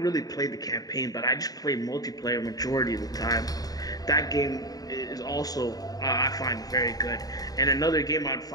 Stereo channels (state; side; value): late; right; 0.18 ms